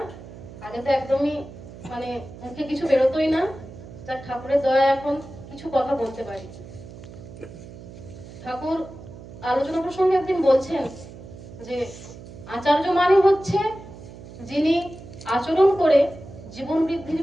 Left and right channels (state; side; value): noise; right; hum, 16 dB below the sound